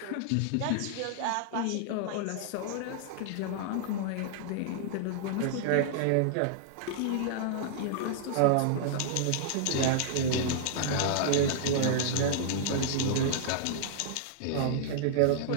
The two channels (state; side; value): different; both; correlation -0.01